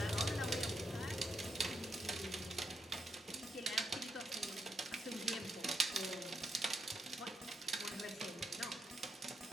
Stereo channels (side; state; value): both; normal; correlation 0.80